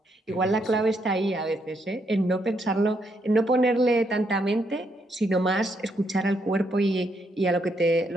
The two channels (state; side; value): normal; both; correlation 0.76